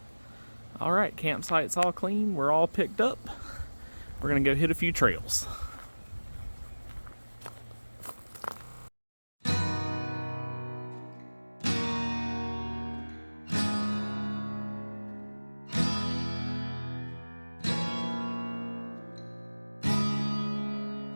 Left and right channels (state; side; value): inverted; both; correlation -1.00